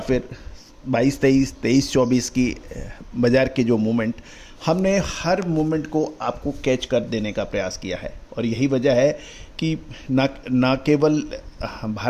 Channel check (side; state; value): both; identical; correlation 1.00